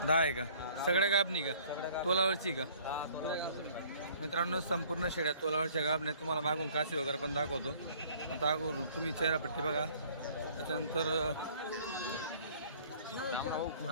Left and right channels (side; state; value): both; inverted; correlation -0.55